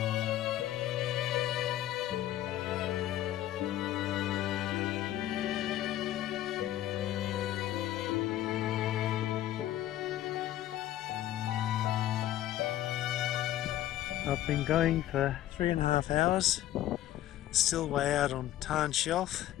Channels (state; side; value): quieter; right; 13.4 dB